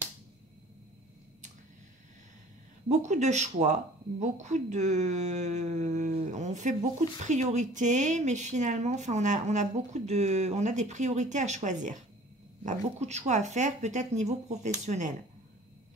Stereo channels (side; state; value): both; normal; correlation 0.49